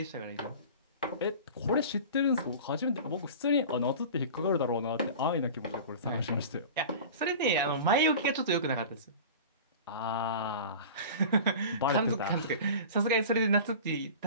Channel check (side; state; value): both; inverted; correlation -0.36